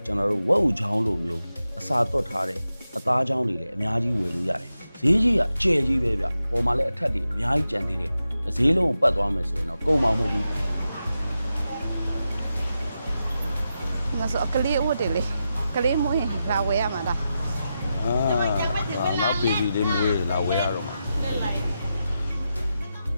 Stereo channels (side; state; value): both; inverted; correlation -0.89